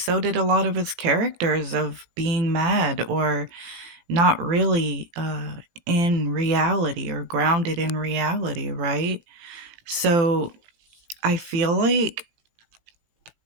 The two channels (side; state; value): left; late; 19 ms